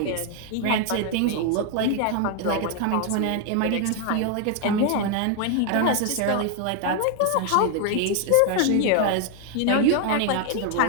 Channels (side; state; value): both; different; correlation 0.00